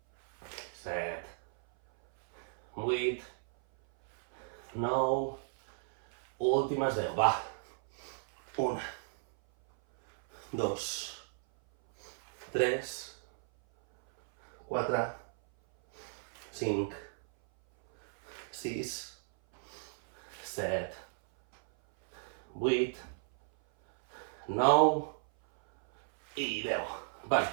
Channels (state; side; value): silent; left; 55 dB below the other